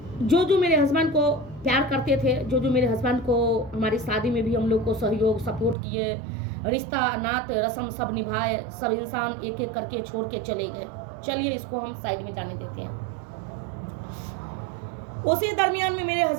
जो मेरे हस्बैंड को प्यार करते थे, जो मेरे हस्बैंड को हमारी शादी में भी हम लोग को सहयोग सपोर्ट किए, रिश्ता नात रस्म सब निभाए, सब इंसान एक एक करके छोड़ के चले गए। चलिए इसको हम साइड में जाने देते हैं। उसी दरमियान में मेरे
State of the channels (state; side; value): drops out; left; at 5.8 s